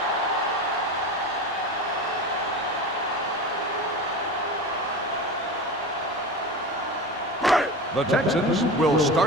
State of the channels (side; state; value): both; normal; correlation 0.28